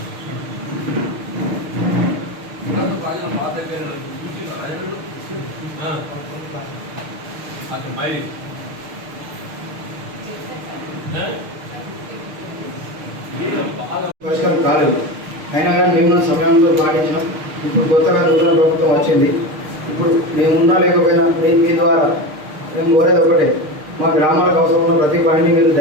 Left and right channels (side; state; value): left; late; 6.5 ms